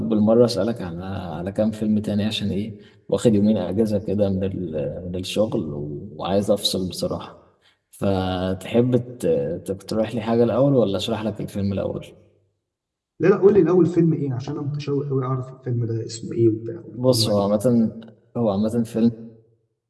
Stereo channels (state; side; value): identical; both; correlation 1.00